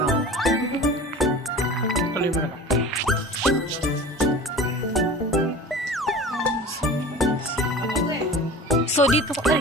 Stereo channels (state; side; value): normal; both; correlation 0.38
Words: Tuloy mo na lang. So